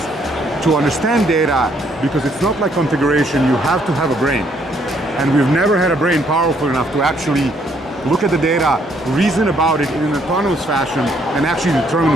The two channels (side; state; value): both; normal; correlation 0.68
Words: to understand data, because it's not like configuration, you have to have a brain. And we've never had a brain powerful enough to actually look at the data, reason about it in an autonomous fashion, and actually